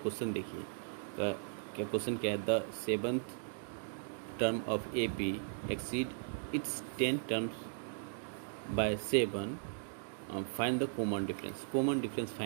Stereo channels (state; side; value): silent; left; digital silence